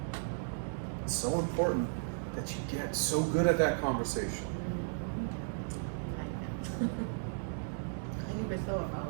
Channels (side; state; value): left; silent; digital silence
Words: It's so important that you get so good at that conversation. I never thought